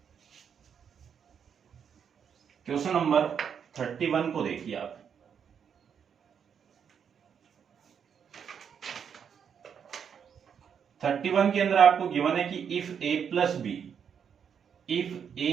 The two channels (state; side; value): quieter; left; 7.5 dB